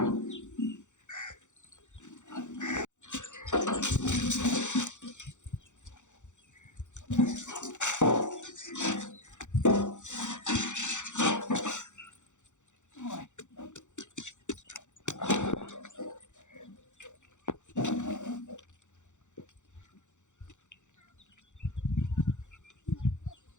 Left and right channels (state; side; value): late; right; 0.85 ms